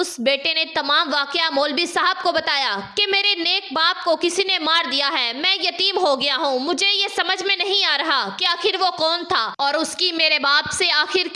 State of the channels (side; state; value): both; identical; correlation 1.00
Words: بیٹے نے تمام واقعہ مولوی صاحب کو بتایا کہ میرے نیک باپ کو کسی نے مار دیا ہے، میں یتیم ہو گیا ہوں، مجھے یہ سمجھ میں نہیں آ رہا کہ آخر وہ کون تھا اور اس کی میرے باپ سے آخر